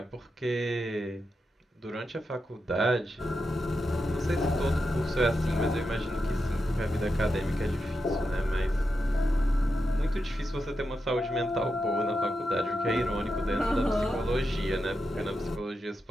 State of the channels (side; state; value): both; normal; correlation 0.87